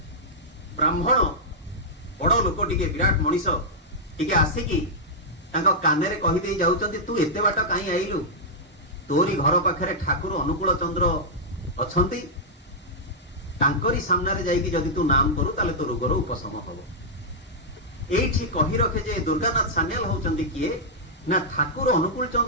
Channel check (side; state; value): both; normal; correlation -0.08